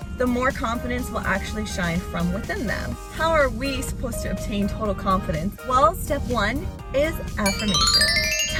the more confidence will actually shine from within them. How are we supposed to obtain total confidence? Well, step one is affirmation.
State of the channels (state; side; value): identical; both; correlation 1.00